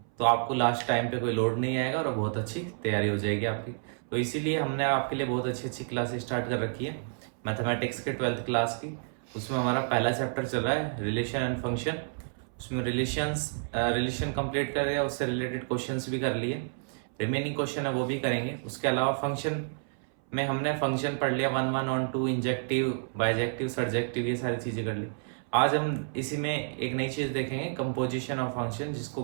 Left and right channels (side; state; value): left; silent; 58 dB below the other